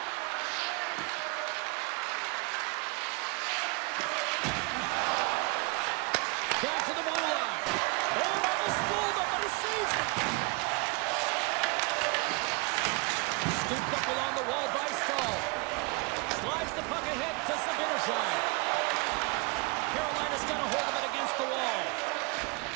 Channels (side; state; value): left; quieter; 28.5 dB